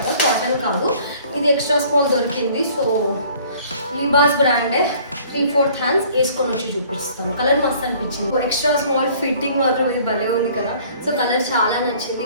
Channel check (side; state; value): both; inverted; correlation -0.54